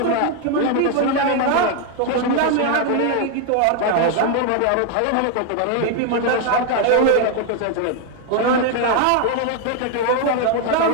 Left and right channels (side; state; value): both; different; correlation 0.01